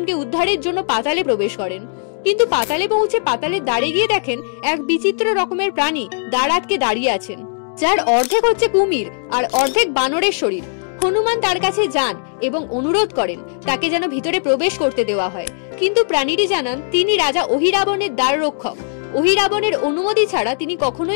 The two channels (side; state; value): right; silent; digital silence